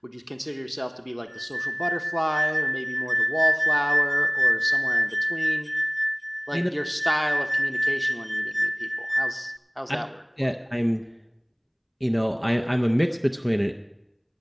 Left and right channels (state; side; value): identical; both; correlation 1.00